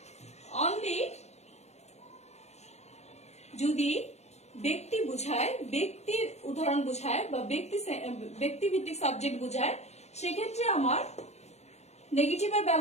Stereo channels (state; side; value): late; right; 0.32 ms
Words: অনলি যদি ব্যক্তি বুঝায়, ব্যক্তির উদাহরণ বুঝায় বা ব্যক্তি ভিত্তিক সাবজেক্ট বুঝায়, সেক্ষেত্রে আমার নেগেটিভের